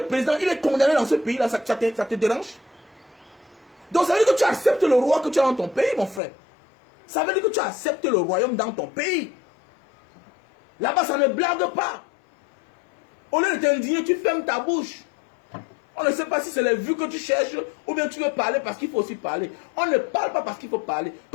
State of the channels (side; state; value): right; drops out; at 6.2 s